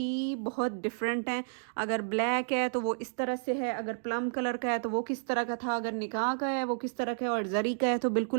बहुत डिफरेंट हैं। अगर ब्लैक है तो वो इस तरह से है, अगर प्लम कलर का है तो वो किस तरह का था, अगर निकाह का है वो किस तरह का है, और जरी का है तो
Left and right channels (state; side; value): silent; left; digital silence